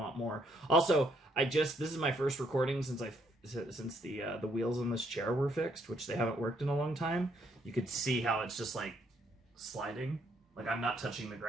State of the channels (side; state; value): both; normal; correlation 0.70